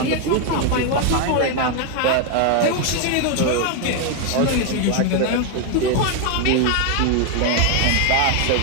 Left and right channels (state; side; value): different; both; correlation 0.01